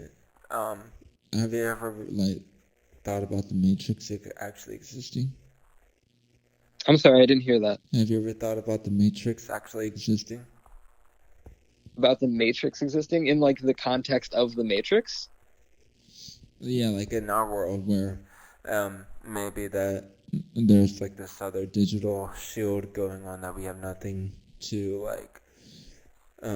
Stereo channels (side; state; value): both; identical; correlation 1.00